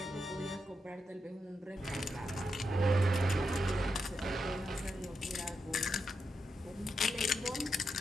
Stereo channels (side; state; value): both; normal; correlation 0.85